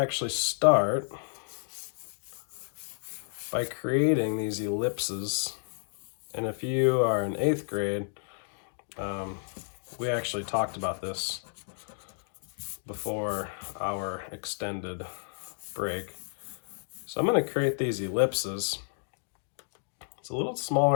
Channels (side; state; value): right; silent; digital silence